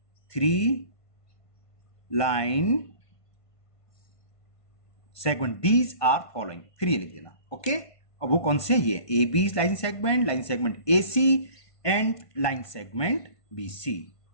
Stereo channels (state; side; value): late; right; 1.5 ms